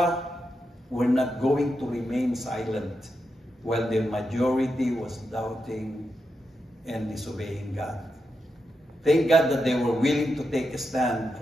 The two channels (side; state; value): both; normal; correlation 0.86